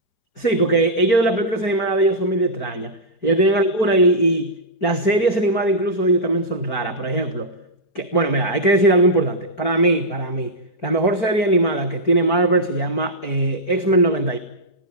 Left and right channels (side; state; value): right; late; 4.4 ms